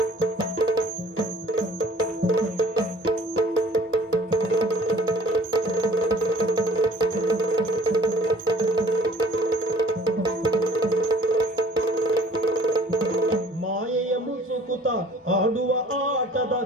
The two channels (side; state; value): both; normal; correlation 0.52